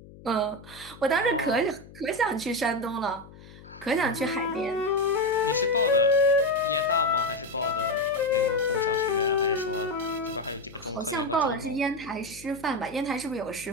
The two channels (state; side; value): noise; left; hum, 20 dB below the sound